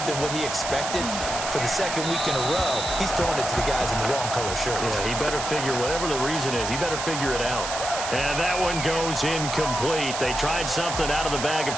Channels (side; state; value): right; noise; hiss, 5 dB below the sound